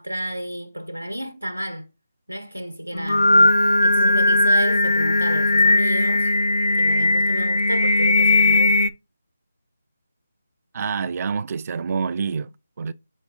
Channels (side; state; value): both; inverted; correlation -0.78